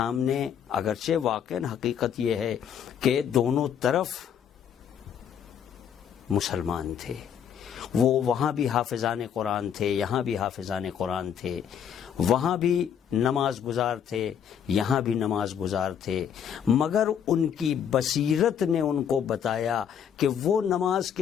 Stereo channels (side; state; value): right; quieter; 8.5 dB